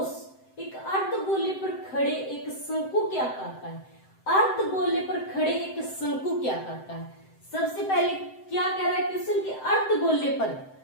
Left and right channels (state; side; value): late; right; 7.8 ms